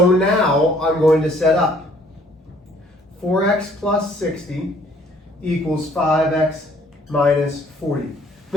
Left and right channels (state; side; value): normal; both; correlation 0.60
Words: now I'm going to set up 4x plus 60 equals 5x minus 40.